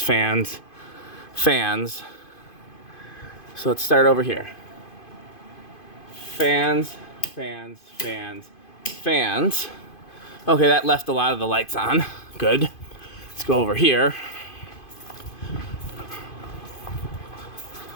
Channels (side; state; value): right; late; 2.5 ms